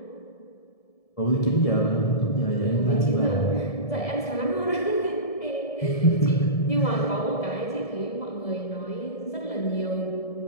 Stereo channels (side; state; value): right; late; 1.7 ms